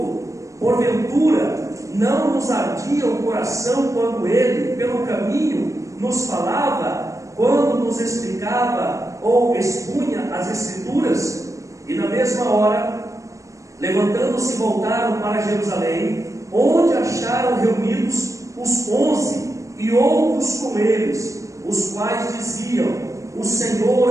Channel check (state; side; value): late; left; 0.15 ms